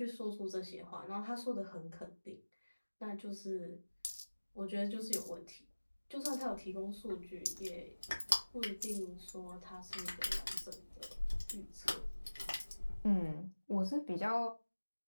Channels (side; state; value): both; inverted; correlation -1.00